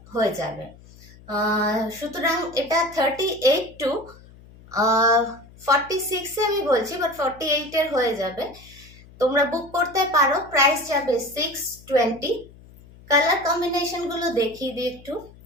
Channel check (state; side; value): noise; left; hum, 22 dB below the sound